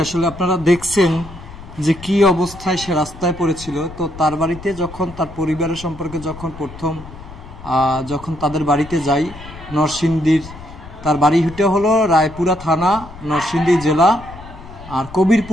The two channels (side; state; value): left; noise; rumble, 16 dB below the sound